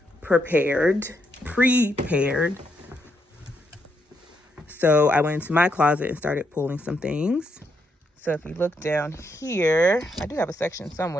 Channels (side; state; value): both; normal; correlation 0.78